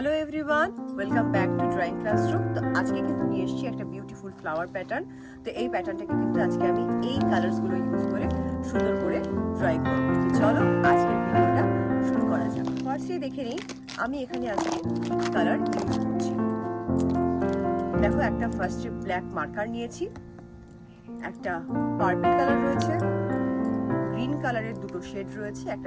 everyone, welcome back to drawing classroom. তো আজকে কিন্তু নিয়ে এসেছি একটা বিউটিফুল ফ্লাওয়ার প্যাটার্ন। তো এই প্যাটার্নটাকে কিন্তু আজকে আমি এই কালার্সগুলো ইউজ করে সুন্দর করে ড্রয়িং করব। তো চলো আজকের ভিডিওটা শুরু করা যাক। ফার্স্টে দেখে নিই আমি এখানে আজকে কালার ইউজ করছি। দেখো, একটা ফার্স্টে ব্ল্যাক মার্কার নিয়েছি, একটা পার্পল কালার রয়েছে, গ্রিন কালারের দুটো শেড রয়েছে,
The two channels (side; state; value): both; identical; correlation 1.00